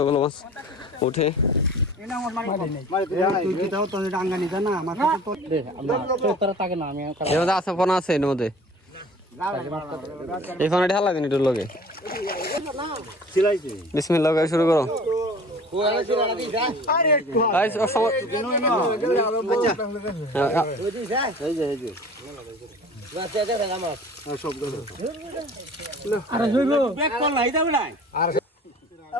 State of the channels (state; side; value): normal; both; correlation 0.45